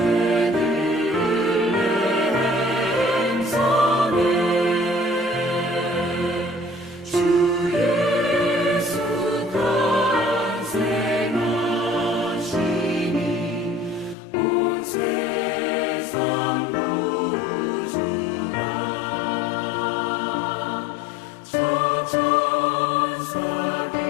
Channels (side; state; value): right; drops out; at 14.2 s